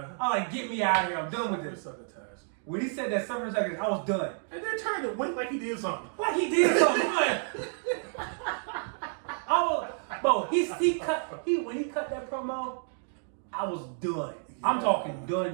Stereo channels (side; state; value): left; silent; 58 dB below the other